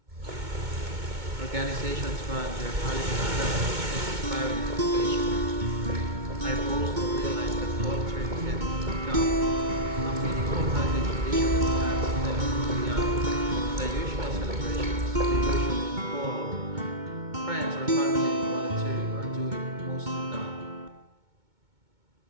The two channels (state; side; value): late; left; 2.2 ms